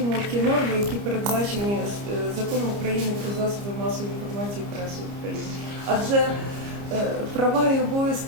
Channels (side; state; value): left; late; 29 ms